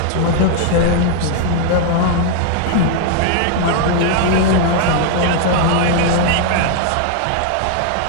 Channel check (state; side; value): different; both; correlation 0.00